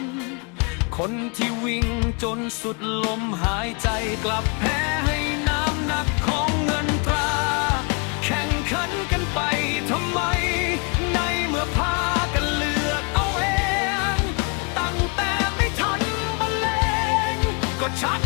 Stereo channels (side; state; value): right; quieter; 34.2 dB